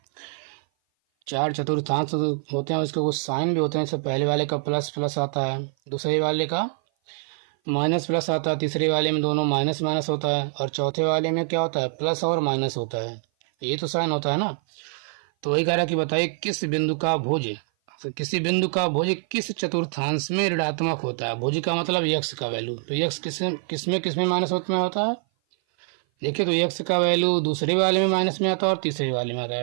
चार चतुर्थांश होते हैं, उसके कुछ साइन भी होते हैं, जैसे पहले वाले का प्लस प्लस आता है, दूसरे वाले का माइनस प्लस आता है, तीसरे वाले में दोनों माइनस माइनस होता है, और चौथे वाले में क्या होता है, प्लस और माइनस होता है। ये तो साइन होता है ना। तो वही कह रहा है कि बताइए किस बिंदु का भुज, तो किसी बिंदु का भुज किस चतुर्थांश में ऋणात्मक होता है। भुज का मतलब x का वैल्यू, तो x किसमें माइनस में होता है। देखिए तो x का वैल्यू दूसरे वाले में माइनस में आता है और तीसरे वाले में आता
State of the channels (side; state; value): left; silent; 57 dB below the other